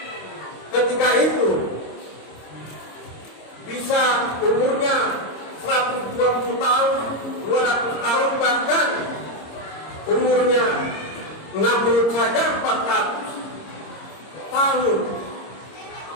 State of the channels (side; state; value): right; late; 26 ms